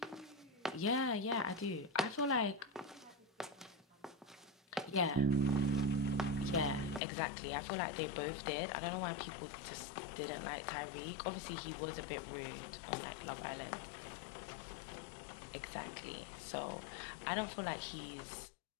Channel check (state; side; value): drops out; right; at 7.0 s